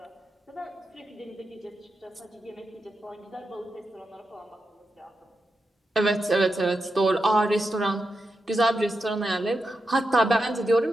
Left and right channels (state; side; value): normal; both; correlation 0.87